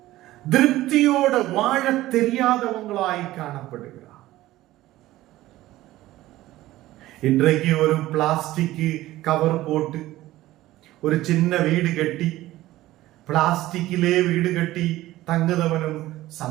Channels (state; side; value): quieter; left; 16.2 dB